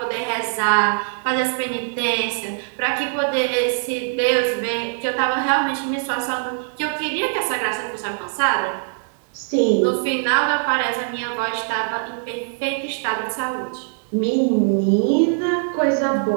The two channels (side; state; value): left; silent; digital silence